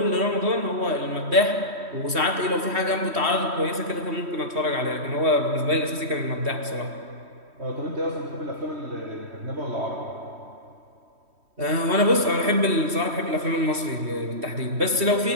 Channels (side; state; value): left; late; 3.1 ms